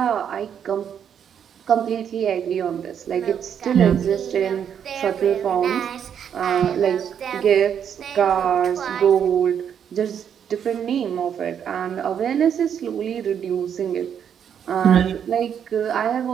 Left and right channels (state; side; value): quieter; left; 8.4 dB